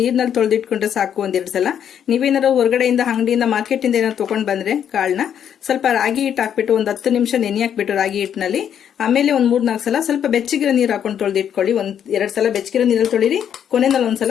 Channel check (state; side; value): quieter; right; 9.0 dB